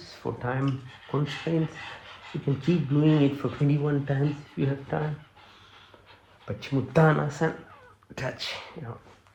for time constraints. You can keep doing it for 21 times if you have time. Paschimottanasana, touch,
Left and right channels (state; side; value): identical; both; correlation 1.00